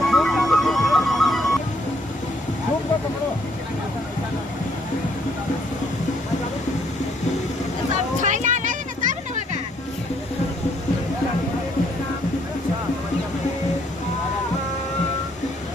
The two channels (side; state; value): both; normal; correlation 0.68